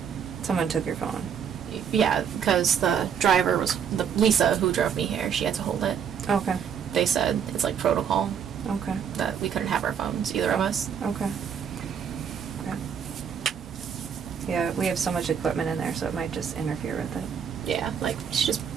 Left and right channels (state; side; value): quieter; left; 7.7 dB